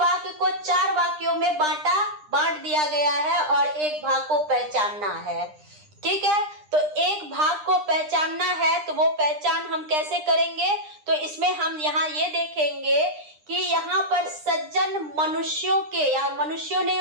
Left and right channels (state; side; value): late; left; 9.9 ms